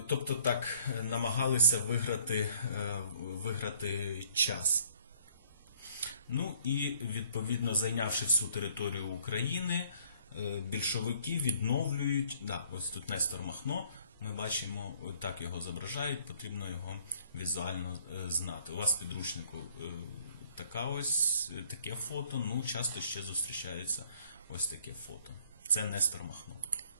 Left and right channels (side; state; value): both; inverted; correlation -0.62